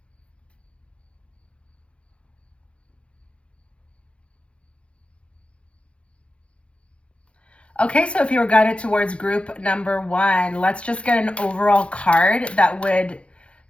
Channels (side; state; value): right; late; 0.060 ms